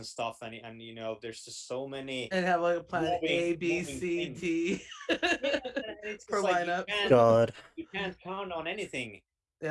stuff, and there's just so many And have like a plan moving A, B, moving C, things. D Yeah, and it's per just like you lineup. can't God. you can't count on anything,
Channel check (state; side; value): identical; both; correlation 1.00